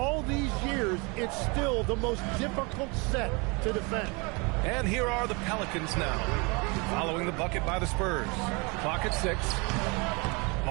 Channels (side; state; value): left; quieter; 29.3 dB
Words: these years, it's still the most difficult set to defend. And here are the Pelicans now, following the bucket by the Spurs. Clock at 6.